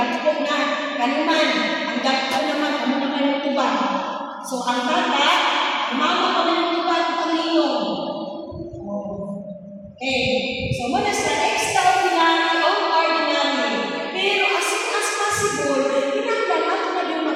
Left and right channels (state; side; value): identical; both; correlation 1.00